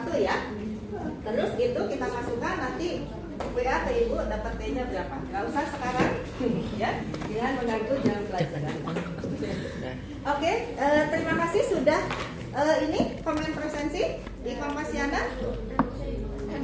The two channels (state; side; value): identical; both; correlation 1.00